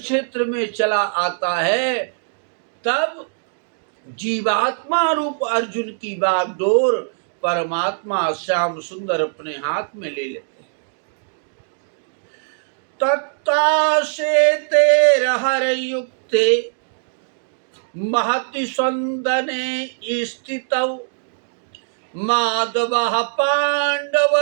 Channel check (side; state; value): left; silent; digital silence